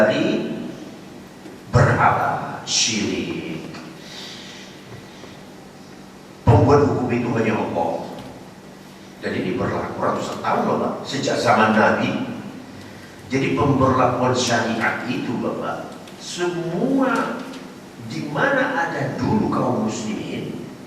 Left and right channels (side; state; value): both; identical; correlation 1.00